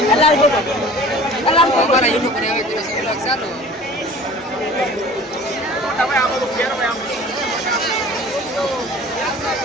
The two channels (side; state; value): both; normal; correlation 0.45